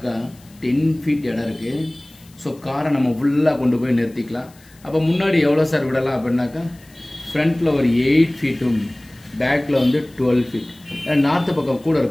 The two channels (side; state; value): left; noise; hiss, 27 dB below the sound